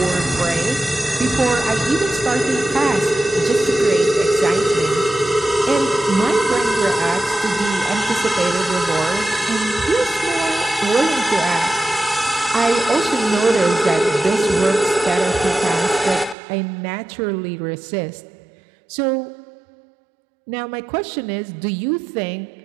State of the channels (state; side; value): drops out; left; at 16.4 s